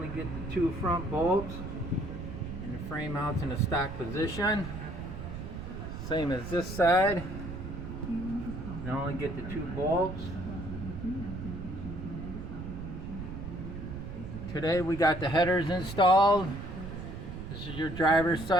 get the two front bolts. And the frame mounts in a stock position. Same as this side. You can only get the two bolts. Today we got the headers installed. This is your driver's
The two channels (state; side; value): noise; right; rumble, 8 dB below the sound